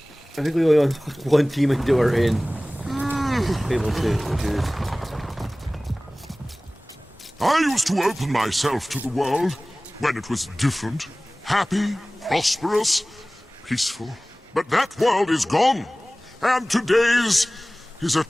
I think we only have one demon door in Fable 2, which is... I used to open myself to the world when it was different, happy, prosperous, peaceful. But that world is gone, and today's is a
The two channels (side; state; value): both; normal; correlation 0.98